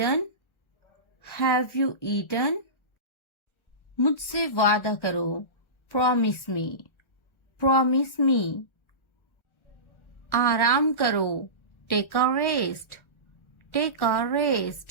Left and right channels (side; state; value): right; late; 1.4 ms